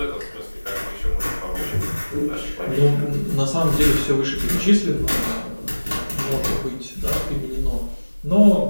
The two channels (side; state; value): both; inverted; correlation -1.00